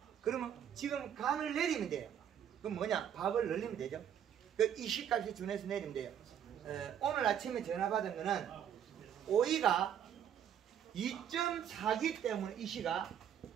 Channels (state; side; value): quieter; left; 9.3 dB